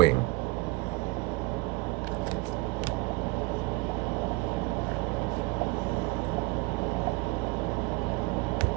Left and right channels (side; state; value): left; quieter; 23.2 dB